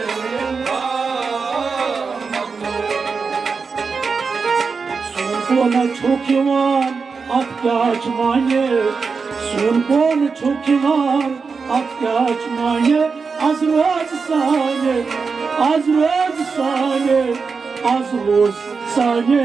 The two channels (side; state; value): left; quieter; 5.0 dB